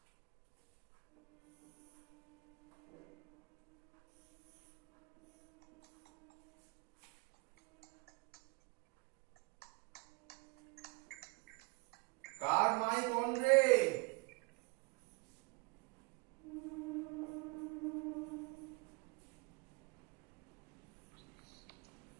কার মাইক অন রে?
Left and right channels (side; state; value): left; quieter; 29.0 dB